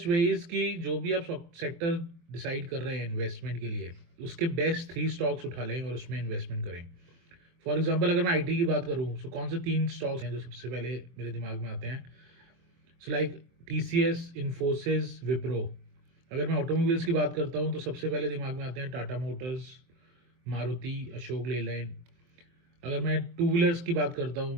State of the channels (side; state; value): left; late; 24 ms